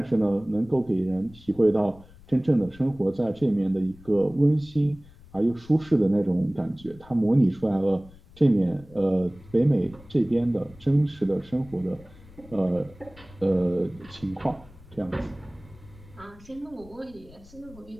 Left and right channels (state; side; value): noise; left; rumble, 23 dB below the sound